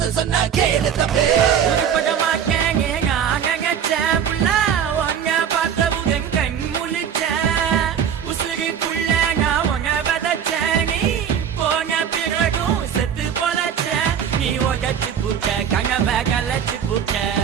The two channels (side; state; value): left; quieter; 8.3 dB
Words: சொன்னா கேளு தம்பி உருப்பட மாட்டேங்க நான் நினைச்சேன் புள்ள உன்னை பார்த்தவுடன் கண் முழிச்சேன் உசுருக்குள்ள நான் உன்னை விதைச்சேன் நீ போன பிறகும் செத்து பொழைச்சேன் நீ உடச்சு புட்ட கனவை கலைச்சு புட்ட